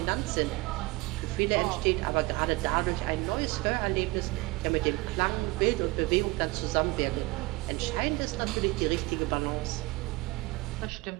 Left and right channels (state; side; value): quieter; left; 23.2 dB